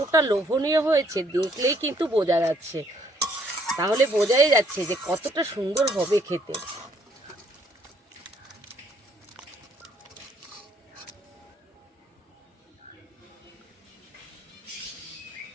লোভনীয় হয়েছে দেখলেই কিন্তু বোঝা যাচ্ছে। তাহলে বোঝাই যাচ্ছে যে কতটা সুন্দর হবে খেতে।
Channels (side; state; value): both; normal; correlation 0.67